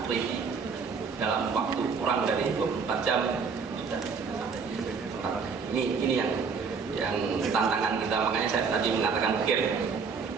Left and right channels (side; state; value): left; quieter; 5.4 dB